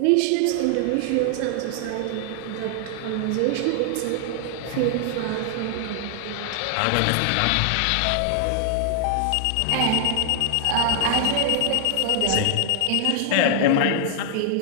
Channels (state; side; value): different; both; correlation 0.00